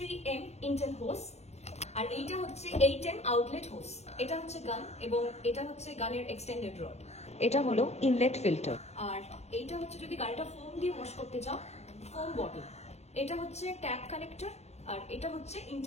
ইন্টেল হোস, আর এইটা হচ্ছে 8M আউটলেট হোস। এটা হচ্ছে গান এবং এটা হচ্ছে গানের এক্সটেন্ডেড রড। এটা হলো ইনলেট ফিল্টার। আর এইটা হচ্ছে যদি গাড়িটা ফোম দিয়ে ওয়াশ করতে চাও, ফোম বটল। এটা হচ্ছে ট্যাপ কানেক্টর, আর এটা হচ্ছে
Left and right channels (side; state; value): right; late; 0.31 ms